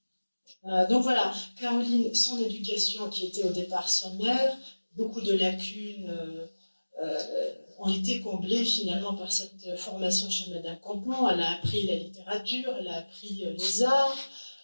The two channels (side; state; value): both; inverted; correlation -1.00